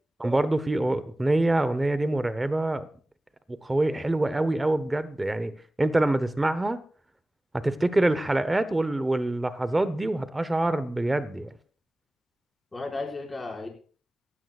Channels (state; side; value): normal; both; correlation 0.97